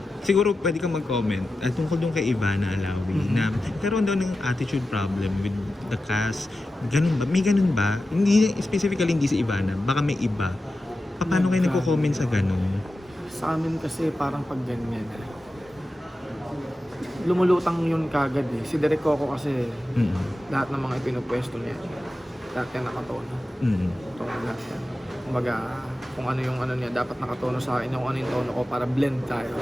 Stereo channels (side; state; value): both; normal; correlation 0.93